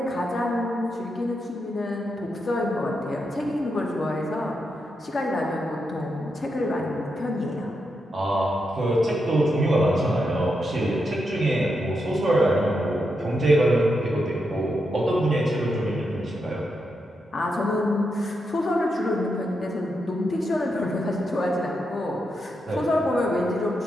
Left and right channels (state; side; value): normal; both; correlation 0.84